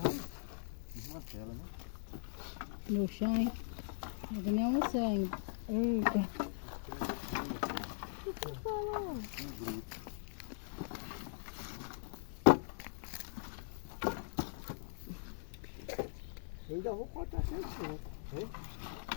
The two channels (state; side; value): silent; right; digital silence